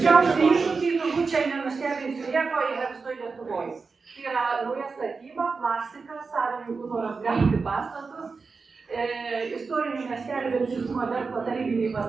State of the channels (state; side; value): quieter; left; 4.6 dB